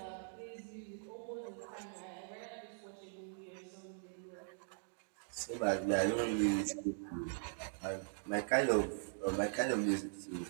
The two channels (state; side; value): silent; left; digital silence